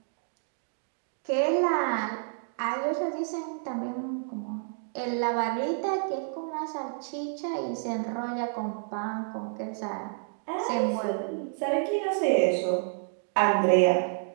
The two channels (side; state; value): left; silent; digital silence